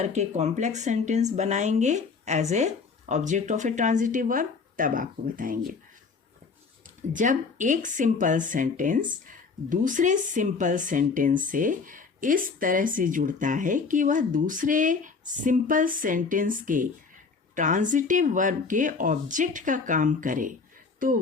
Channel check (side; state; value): right; quieter; 4.9 dB